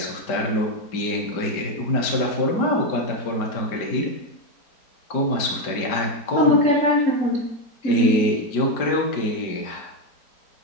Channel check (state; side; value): late; right; 5.1 ms